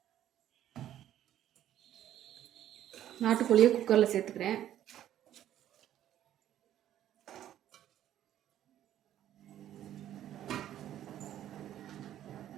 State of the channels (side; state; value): left; quieter; 11.8 dB